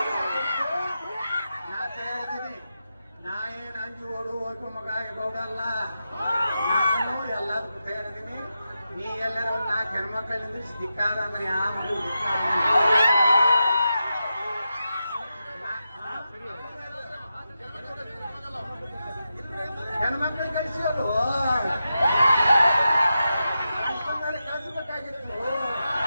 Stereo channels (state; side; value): inverted; both; correlation -0.89